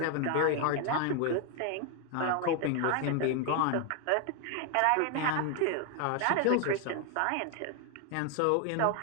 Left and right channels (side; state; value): both; different; correlation 0.01